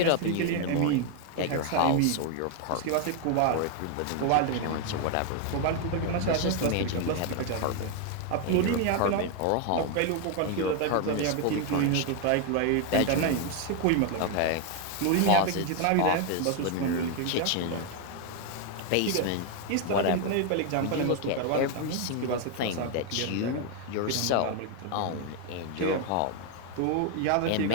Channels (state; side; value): different; both; correlation 0.01